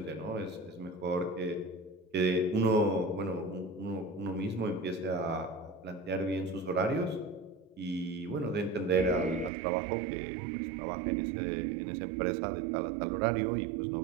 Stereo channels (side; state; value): left; drops out; at 9.5 s